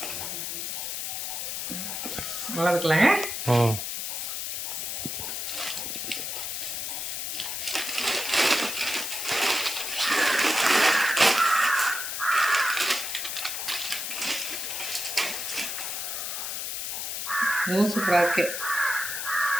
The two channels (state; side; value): noise; left; hiss, 3 dB below the sound